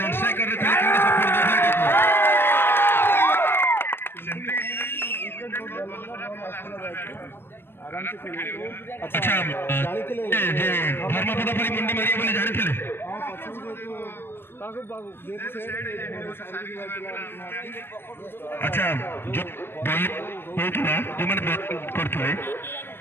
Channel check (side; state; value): right; late; 0.10 ms